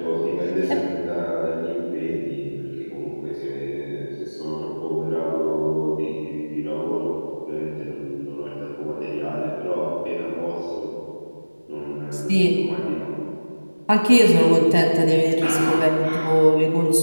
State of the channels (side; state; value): both; inverted; correlation -1.00